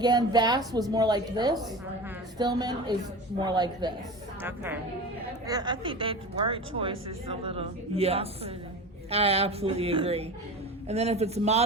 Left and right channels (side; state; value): both; normal; correlation 0.31